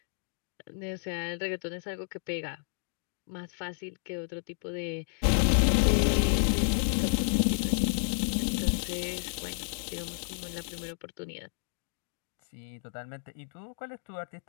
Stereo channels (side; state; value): right; silent; digital silence